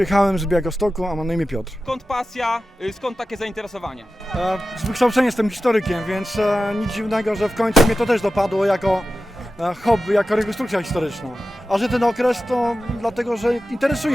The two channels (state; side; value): normal; both; correlation 0.93